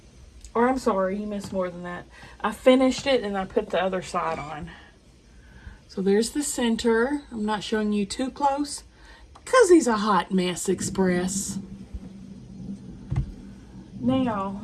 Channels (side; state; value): both; identical; correlation 1.00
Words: Or I'm sorry, you missed more than that. I finished it and I put the other side on. So there's the center. I'm not showing you too close because he's a hot mess express. Now,